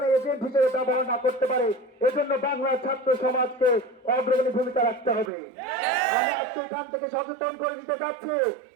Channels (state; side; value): drops out; left; at 5.3 s